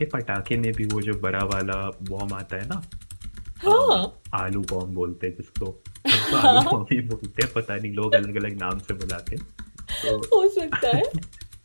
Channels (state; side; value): inverted; both; correlation -1.00